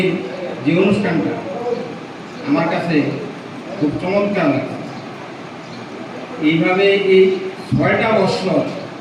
যে অনুষ্ঠানটা আমার কাছে খুব চমৎকার লাগে। এইভাবে এই 6টা বছর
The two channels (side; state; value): both; identical; correlation 1.00